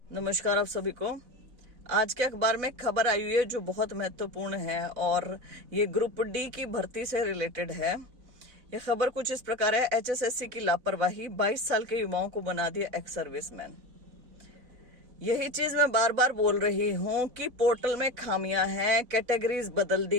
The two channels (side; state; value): left; late; 4.0 ms